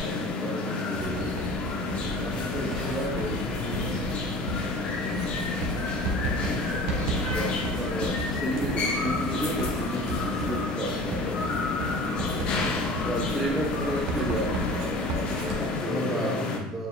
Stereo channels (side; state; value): both; normal; correlation 0.41